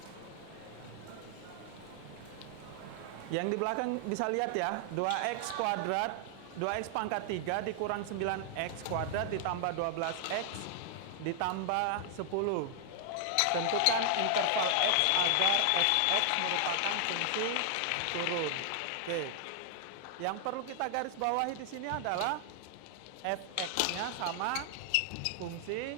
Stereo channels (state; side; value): different; both; correlation 0.00